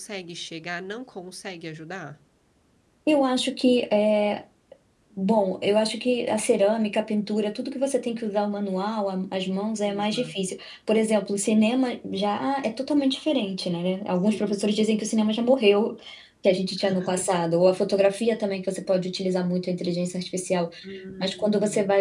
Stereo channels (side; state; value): both; identical; correlation 1.00